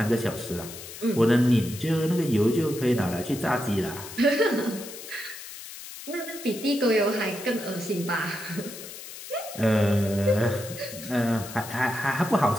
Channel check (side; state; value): left; noise; hiss, 13 dB below the sound